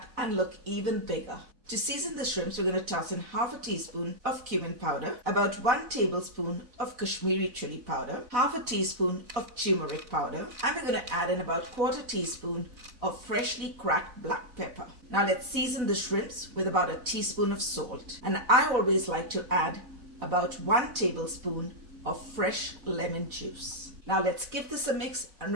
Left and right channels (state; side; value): late; left; 4.0 ms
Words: and look even bigger. To season the shrimps, we're going to toss in half a teaspoon of cumin powder, about 1 tablespoon of Kashmir Chilli Powder, half a teaspoon of Tumeric Powder, and we're going to add in about 1/4 teaspoon of freshly cracked black pepper. Now let's season the shrimps with about a teaspoon of salt. And I always like to add about 1 tablespoon of fresh lemon juice. Now let's give this a mix, and